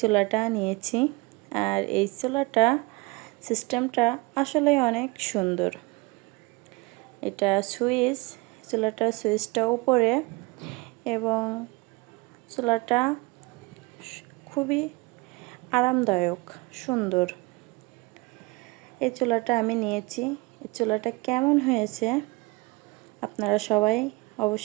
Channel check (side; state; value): left; quieter; 24.4 dB